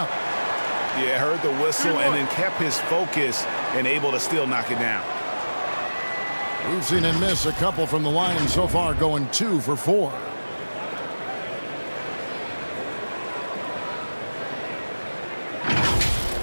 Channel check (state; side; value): inverted; both; correlation -1.00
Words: Yeah, heard the whistle and then kept his focus and able to still knock it down. We've seen him miss a couple from the line so far, going 2 for 4.